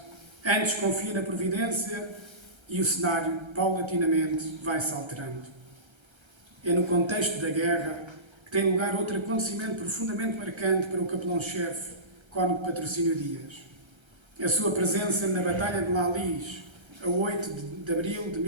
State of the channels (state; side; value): late; left; 1.3 ms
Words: antes confia na providência e o cenário, paulatinamente, vai-se alterando. É no contexto da guerra que tem lugar outro acontecimento profundamente marcante para o capelão-chefe, cônego Patrocínio Dias. A sua presença na Batalha de Lalis, a 8 de abril de